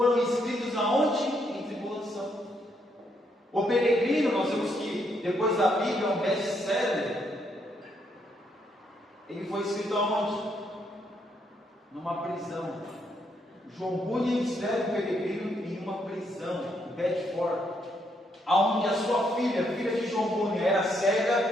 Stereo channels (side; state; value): both; normal; correlation 0.75